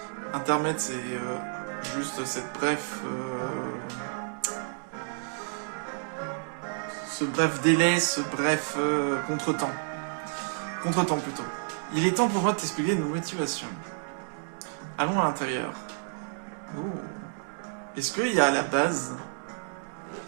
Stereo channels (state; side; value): silent; left; digital silence